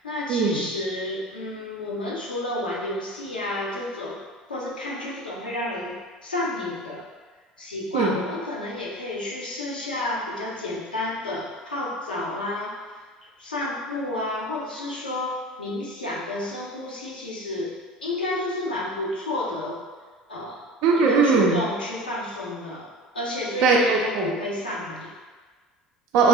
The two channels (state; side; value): normal; both; correlation 0.35